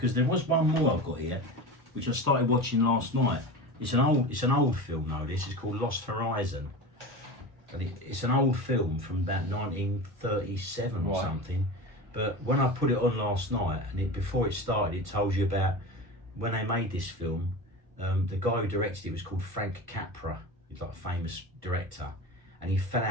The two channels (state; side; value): late; left; 1.1 ms